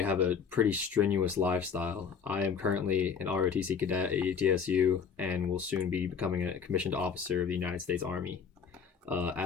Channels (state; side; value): quieter; right; 6.4 dB